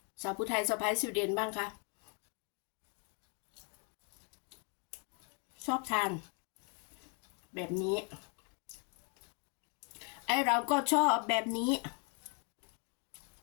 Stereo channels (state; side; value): quieter; right; 37.4 dB